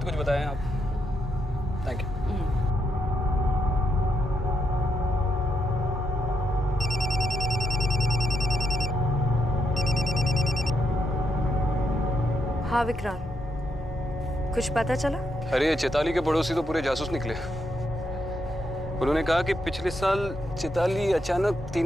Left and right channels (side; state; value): both; normal; correlation 0.79